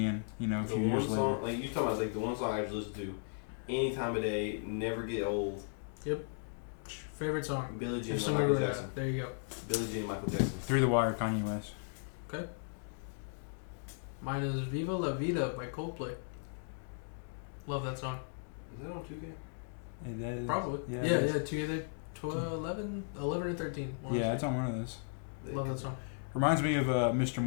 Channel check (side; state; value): right; silent; digital silence